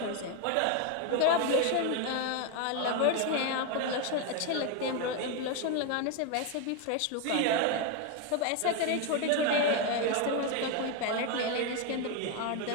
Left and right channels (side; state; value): both; different; correlation 0.02